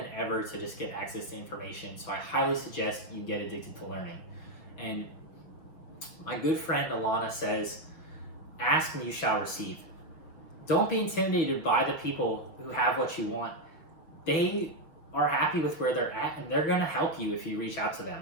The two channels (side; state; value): right; late; 6.4 ms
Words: ever to just get access to information. So I highly suggest you get addicted to learning. And my good friend Alana says, ask and you shall receive. Don't be intimidated by the people who have what you want. They are happy with where they're at, and they're gonna help you if you reach out to